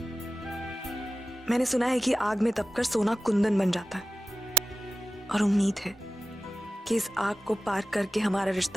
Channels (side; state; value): both; normal; correlation 0.94